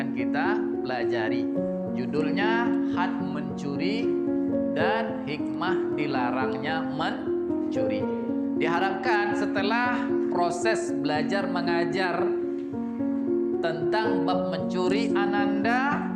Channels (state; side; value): identical; both; correlation 1.00